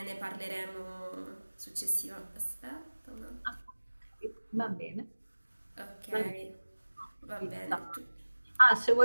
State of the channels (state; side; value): inverted; both; correlation -1.00